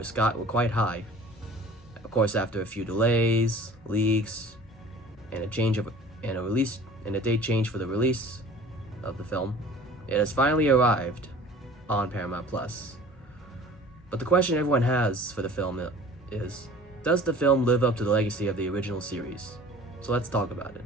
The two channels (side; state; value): both; normal; correlation 0.46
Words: quite high. Of course, after a few delays, leaks, and a date change for the release of the film, it has finally arrived on Paramount Plus. But the question everyone has for the film is, does the film live up to the legacy of the original series? So let's talk about it.